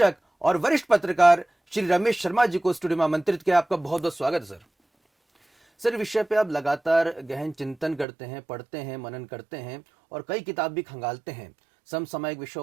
और वरिष्ठ पत्रकार श्री रमेश शर्मा जी को स्टूडियो में आमंत्रित किया। आपका बहुत बहुत स्वागत है सर। विषय पे आप लगातार गहन चिंतन करते हैं, पढ़ते हैं, मनन करते हैं और कई किताब भी खंगालते हैं। समसामयिक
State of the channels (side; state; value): left; drops out; at 8.1 s